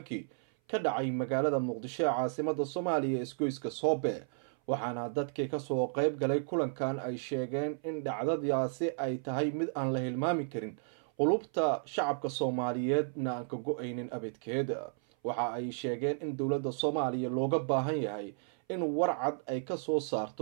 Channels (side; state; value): left; silent; 56 dB below the other